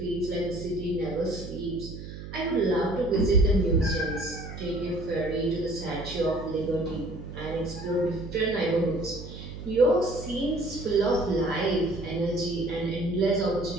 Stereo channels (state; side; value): noise; right; hum, 11 dB below the sound